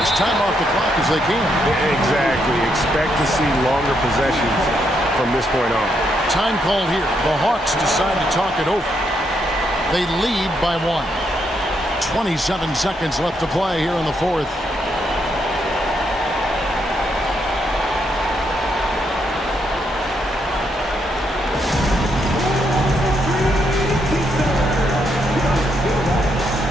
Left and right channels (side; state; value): both; normal; correlation 0.77